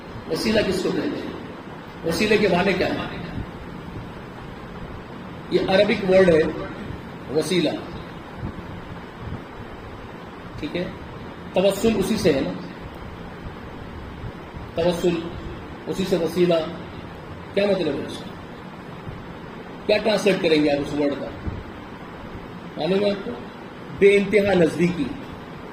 وسیلہ کس کو کہتے ہیں؟ وسیلے کے معنی کیا ہے؟ یہ عربک ورڈ ہے وسیلہ، ٹھیک ہے؟ توسل اسی سے ہے نا، توسل اسی سے، وسیلہ کیا مطلب ہے اس کا؟ کیا ٹرانسلیٹ کریں گے آپ اس ورڈ کا؟ معلوم ہے آپ کو؟ بے انتہا نزدیکی،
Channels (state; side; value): identical; both; correlation 1.00